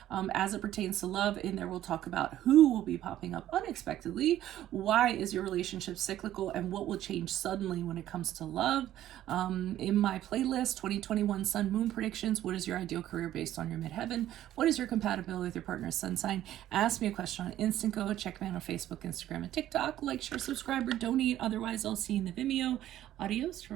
as it pertains to love. In there, we'll talk about who will be popping up unexpectedly, why is your relationship cyclical, and what will change suddenly when it comes to love. In my playlist, 2021 Sun Moon Predictions, what is your ideal career based on your midheaven? What is your compatibility with your partner's sun sign? Ask me a question on Instant Go. Check me out on Facebook, Instagram, and TikTok. Like, share, subscribe, or donate. Otherwise, I'll see you in the Vimeo. Adios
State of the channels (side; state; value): left; quieter; 12.8 dB